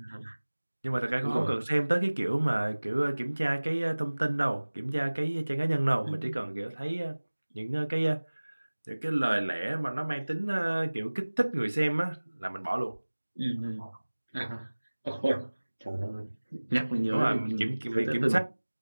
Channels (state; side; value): inverted; both; correlation -1.00